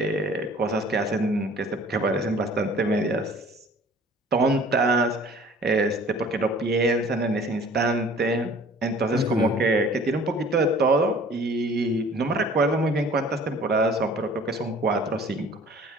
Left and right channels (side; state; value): both; normal; correlation 0.50